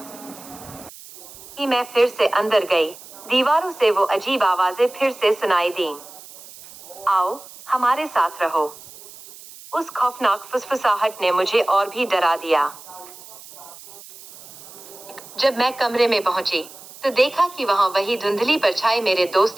मैं फिर से अंदर गई। दीवारों से वो अजीब आवाजें फिर से सुनाई दीं, आओ हमारे साथ रहो। उस खौफनाक फुसफुसाहट ने मुझे और भी डरा दिया। जब मैं कमरे में पहुंची तो देखा कि वहां वही धुंधली परछाई मेरे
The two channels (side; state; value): right; noise; hiss, 18 dB below the sound